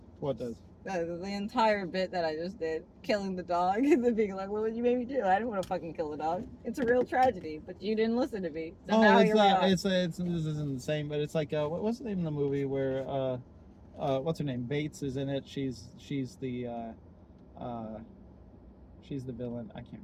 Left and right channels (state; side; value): identical; both; correlation 1.00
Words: What does? The entire bit that I just did, killing the dog, and then being like, "What would you make me do? I didn't want to fucking kill the dog. It's a real tragedy, but you didn't listen to me." So now it's here we are. this isn't the same, but it's like what's the name of the movie where what's her name? Bates is in it. She's the villain. I can't